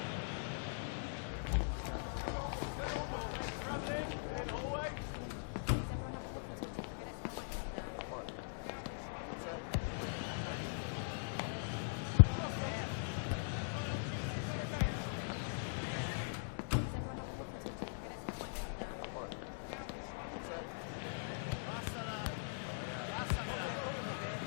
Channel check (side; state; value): right; silent; digital silence